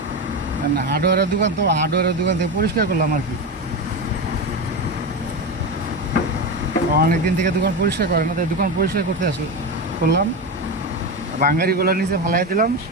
হার্ডওয়্যারের দোকান তো, হার্ডওয়্যারের দোকান থেকে পরিষ্কার করলাম আর কি। অনেকদিন থেকে দোকান পরিষ্কার করে না, তাই দোকান পরিষ্কার করতে করলাম। বাঙালিগুলো নিচে ফালাই দিলাম,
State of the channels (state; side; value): normal; both; correlation 0.18